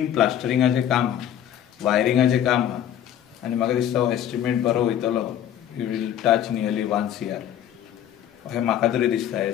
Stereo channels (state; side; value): quieter; right; 10.4 dB